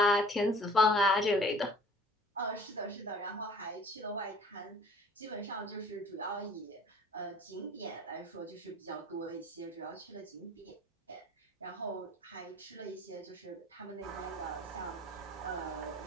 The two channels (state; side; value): normal; both; correlation 0.49